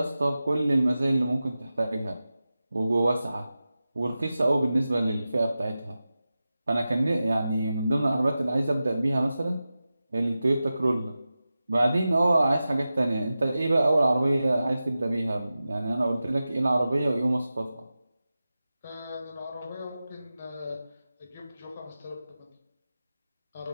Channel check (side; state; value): both; inverted; correlation -0.94